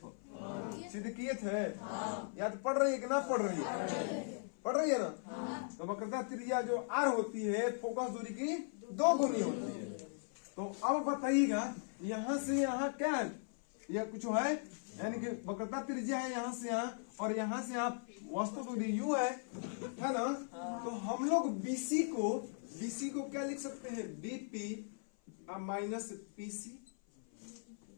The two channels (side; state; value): right; silent; 52 dB below the other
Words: सिद्ध किए थे, याद पढ़ रही है कि ना पढ़ रही है? पढ़ रही है ना। तो वक्रता त्रिज्या जो आर होती है, फोकस दूरी की 2 गुनी होती है। तो अब बताइएगा यहाँ से यहाँ क्या है, यह कुछ है यानी कि वक्रता त्रिज्या है यहाँ से यहाँ और यहाँ से यहाँ वस्तु तो यू है ना। तो हम लोग बीसी को क्या लिख सकते हैं, बीपी माइनस पीसी।